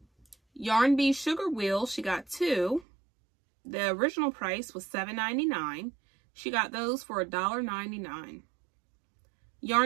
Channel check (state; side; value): drops out; left; at 2.9 s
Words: Yarn Bee sugar wheel, she got 2. The original price was $7.99. She got those for $1.99.